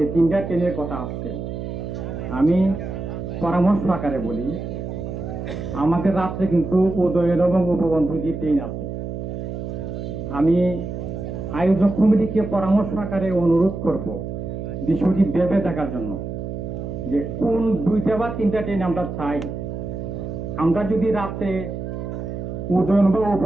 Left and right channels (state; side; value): noise; right; hum, 6 dB below the sound